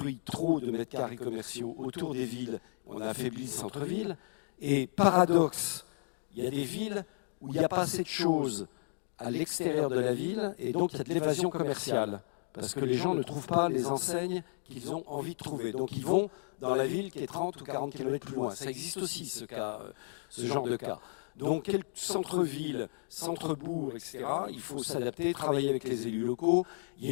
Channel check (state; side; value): silent; right; digital silence